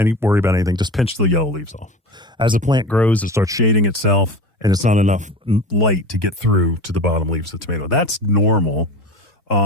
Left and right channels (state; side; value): normal; both; correlation 0.33